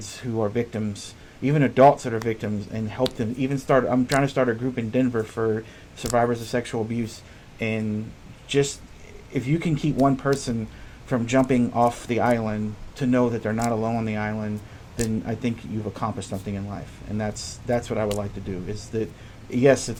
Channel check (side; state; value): both; identical; correlation 1.00